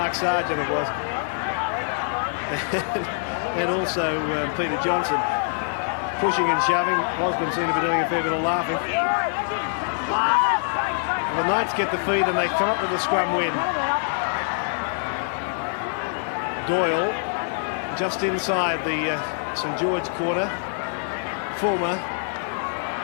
Sargent, it was. And also Peter Johnson. Pushing and shoving. Osborne seemed to be doing a fair bit of laughing. The Knights get the feed and they come up with a scrum win. Doyle just inside the St George quarter. Fulmer.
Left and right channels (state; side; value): silent; right; 62 dB below the other